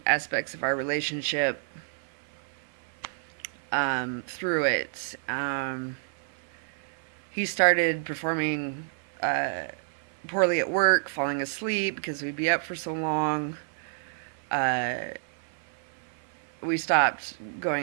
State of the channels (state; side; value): silent; left; 58 dB below the other